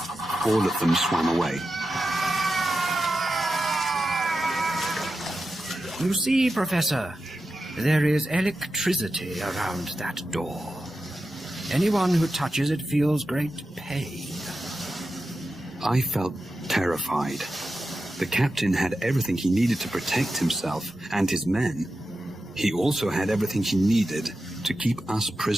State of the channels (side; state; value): both; normal; correlation 0.91